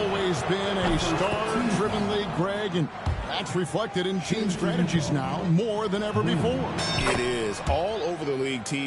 been a star-driven league, Greg, and that's reflected in team strategies now more than ever before. It is. All over the league,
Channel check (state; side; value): identical; both; correlation 1.00